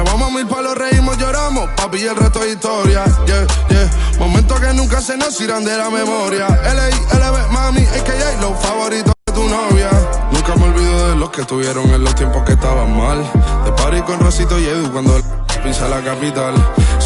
mil palos, reímos, lloramos, papi, y el resto es historia. Yeah, yeah. Momentos que nunca se nos irán de la memoria. LB, mami, AKA, los favoritos de tu novia. Nunca me olvido de los que estuvieron en los tiempos que estaban mal. De party con Rosito y Edu cuando pisa la capital.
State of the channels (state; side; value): identical; both; correlation 1.00